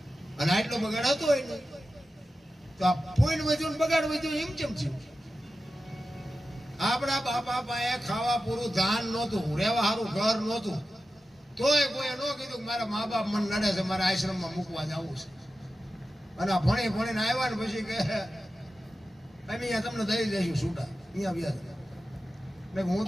અને આટલો બગાડ હતો હોય ને તો આ પુણ્ય વધ્યું ને બગાડ વધ્યું એમ કેમ થયું? આપણા બાપા પાસે ખાવા પૂરું ધાન નહોતું, રહેવા સારું ઘર નહોતું, તોય કોઈ ન કીધું કે મારા મા બાપ મને નડે છે, મારા આશ્રમમાં મૂકવા જવું છે. અને ભણીને આવ્યા ને પછી કે અમે અહીંયા તમને દઈ દઈશું છૂટા, અહીંયા વ્યાજ. હું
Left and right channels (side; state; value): both; normal; correlation 0.93